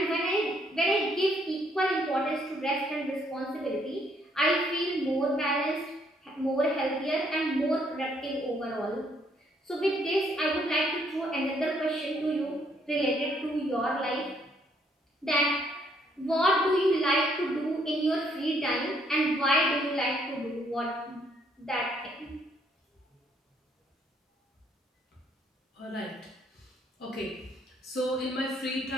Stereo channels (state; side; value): normal; both; correlation 0.69